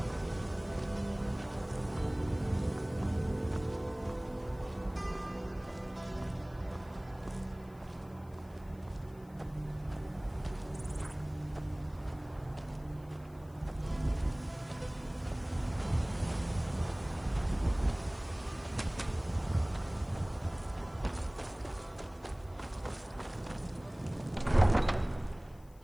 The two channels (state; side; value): noise; left; hiss, 28 dB below the sound